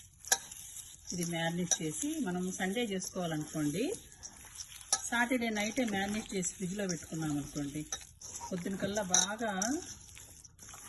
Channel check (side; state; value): both; identical; correlation 1.00